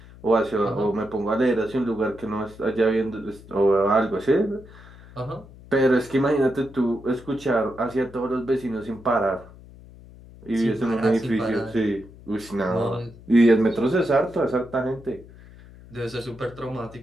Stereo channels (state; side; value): noise; left; hum, 20 dB below the sound